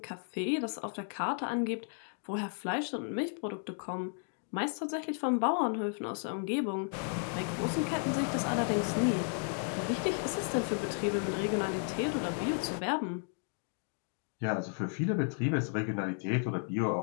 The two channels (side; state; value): right; silent; 55 dB below the other